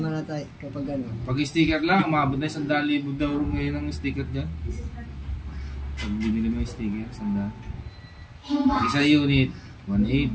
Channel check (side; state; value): both; identical; correlation 1.00